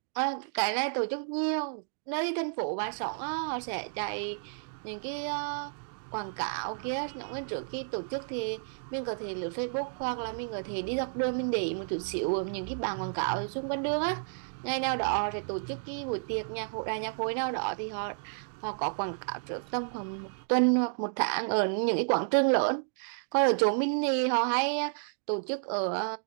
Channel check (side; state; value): left; silent; digital silence